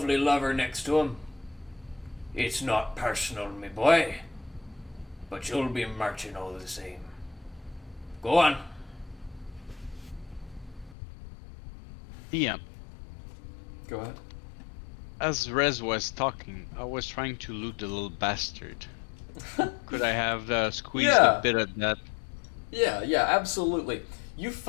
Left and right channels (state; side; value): drops out; right; at 11.0 s